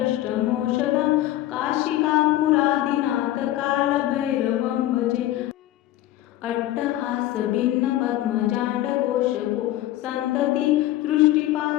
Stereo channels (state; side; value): quieter; right; 14.6 dB